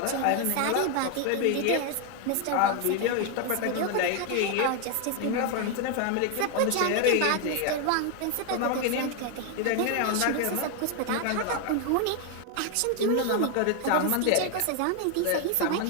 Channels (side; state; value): both; different; correlation 0.01